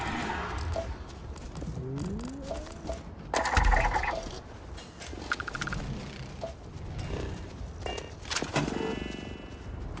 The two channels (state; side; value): identical; both; correlation 1.00